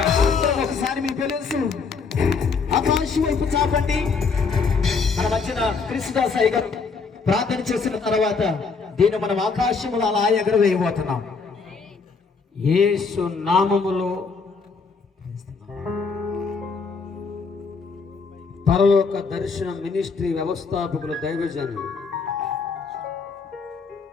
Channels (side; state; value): right; quieter; 4.9 dB